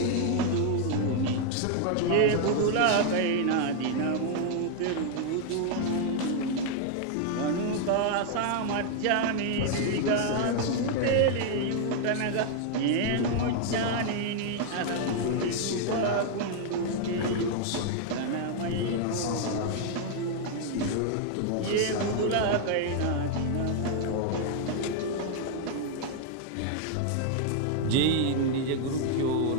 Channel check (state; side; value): different; both; correlation 0.00